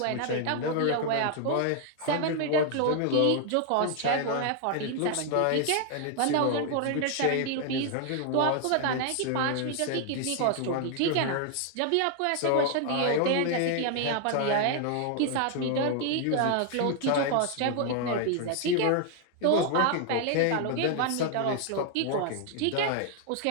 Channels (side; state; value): both; different; correlation 0.00